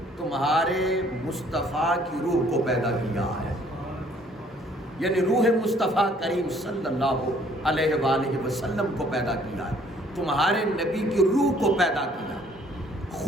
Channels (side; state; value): both; normal; correlation 0.61